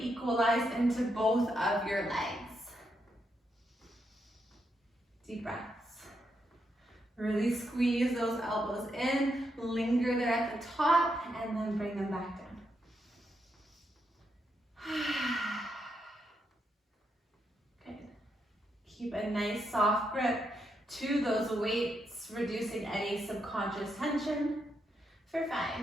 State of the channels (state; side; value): normal; both; correlation 0.81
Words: equalized into both of your legs. Deep breaths. Really squeeze those elbows in, linger there at the top, and then bring them back down. Good. Keep a nice soft grip to those weights, reducing any subconscious tension. For 5,